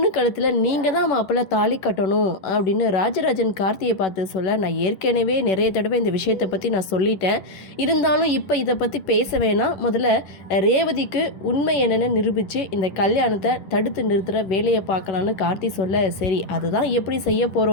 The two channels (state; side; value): late; right; 11 ms